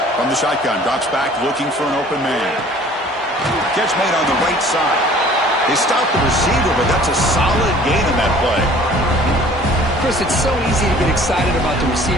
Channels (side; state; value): both; normal; correlation 0.51